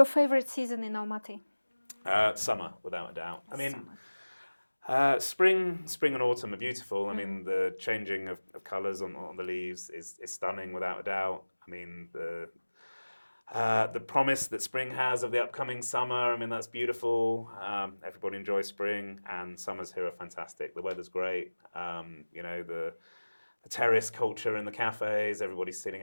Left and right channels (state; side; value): inverted; both; correlation -1.00